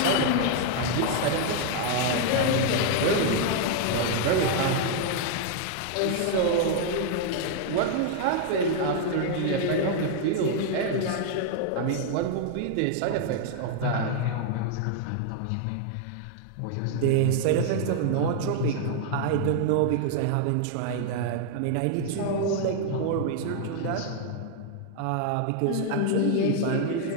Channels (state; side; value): different; both; correlation 0.00